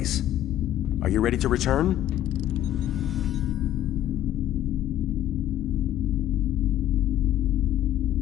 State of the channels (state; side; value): quieter; right; 12.5 dB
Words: Are you ready to return?